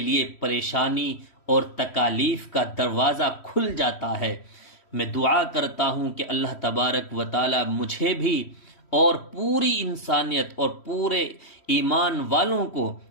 پریشانی اور تکالیف کا دروازہ کھل جاتا ہے۔ میں دعا کرتا ہوں کہ اللہ تبارک و تعالی مجھے بھی اور پوری انسانیت اور پورے ایمان والوں کو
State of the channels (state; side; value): late; right; 3.1 ms